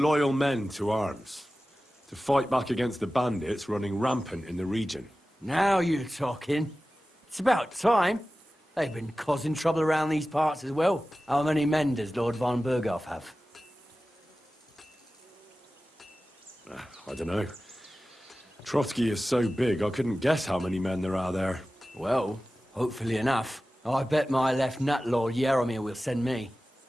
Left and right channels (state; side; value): normal; both; correlation 0.95